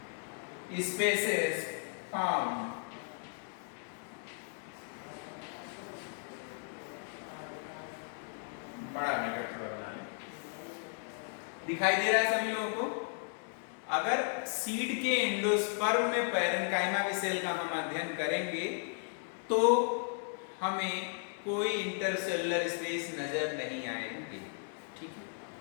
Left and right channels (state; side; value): silent; right; 54 dB below the other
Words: spaces found. बड़ा ब्रैकेट थोड़ा बना लें, दिखाई दे रहा है सभी लोगों को? अगर सीड के एंडोस्पर्म में पैरेन्काइमा की सेल का हम अध्ययन करेंगे तो हमें कोई इंटरसेलुलर स्पेस नजर नहीं आएंगे, ठीक है?